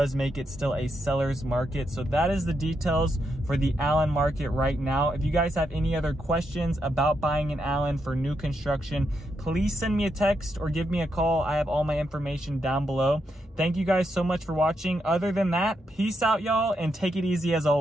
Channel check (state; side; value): normal; both; correlation 0.82